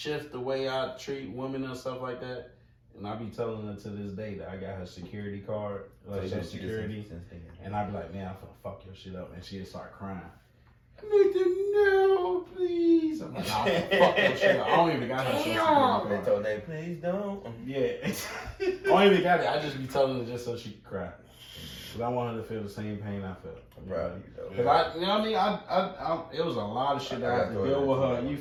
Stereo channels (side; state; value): both; identical; correlation 1.00